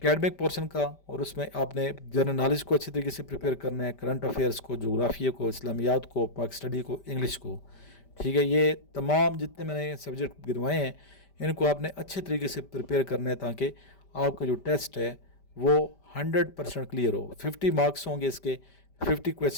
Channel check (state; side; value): late; right; 5.1 ms